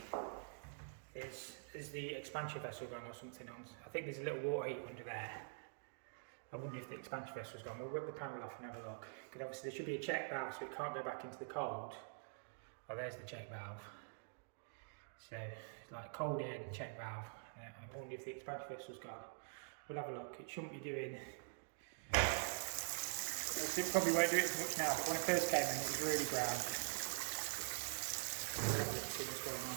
is the expansion vessel gone or something on. I think there's a little water heater under there. I wonder if the expansion vessel's gone. We'll rip the panel off and have a look. Because obviously there should be a check valve so it can't go back into the cold. Oh, there's the check valve. So it's like cold air and check valve. I wonder if the expansion vessel's gone. We'll have a look. It shouldn't be doing... It probably won't do it as much now, but when I first came in it was really brown. We'll have a look and see what's going on.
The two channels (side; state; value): left; silent; digital silence